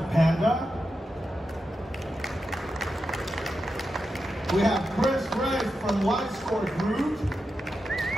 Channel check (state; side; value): normal; both; correlation 0.88